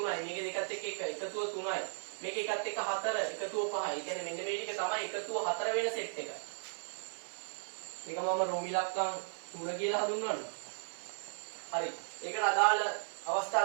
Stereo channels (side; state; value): left; silent; digital silence